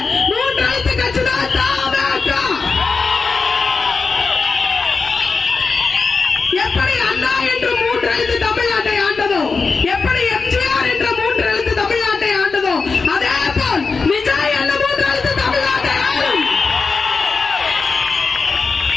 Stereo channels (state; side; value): quieter; right; 4.6 dB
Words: 3 எழுத்து கட்சி தான் தமாக. எப்படி அண்ணா என்று 3 எழுத்து தமிழ்நாட்டை ஆண்டதோ, எப்படி எம்ஜிஆர் என்ற 3 எழுத்து தமிழ்நாட்டை ஆண்டதோ, அதே போல் விஜய் என்ற 3 எழுத்து தமிழ்நாட்டை ஆளும்.